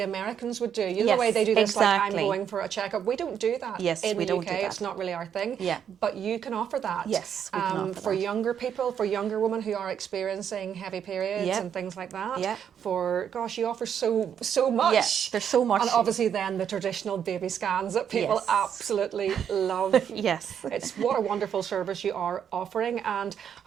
Americans would do, you know, the way they do this, like, I'm going for a checkup. We don't do that in the UK. It's not really our thing. Yeah. But you can offer that. Yes, we can offer for that. younger people, for younger women who are experiencing heavy periods and things like that. Yeah. For, gosh, you offer so much. Yes, there's so much. And obviously then the traditional baby scans that people absolutely love. Yes. It's what a wonderful service you are offering, and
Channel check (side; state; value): left; quieter; 8.5 dB